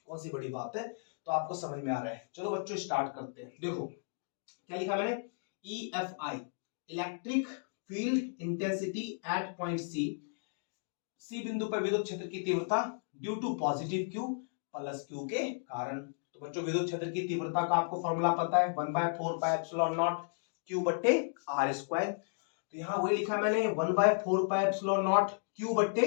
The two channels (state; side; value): silent; right; digital silence